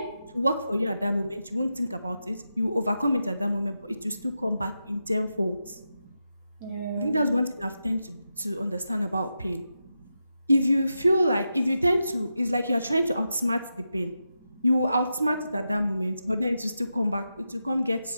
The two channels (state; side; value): inverted; both; correlation -0.88